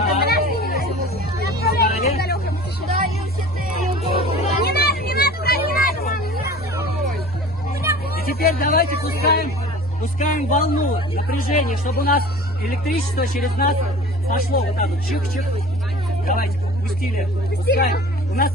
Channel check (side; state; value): both; normal; correlation 0.41